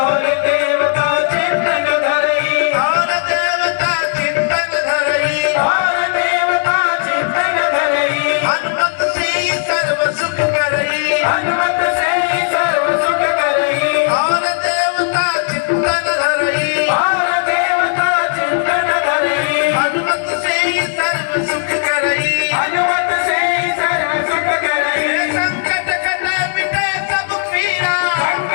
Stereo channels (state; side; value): silent; right; digital silence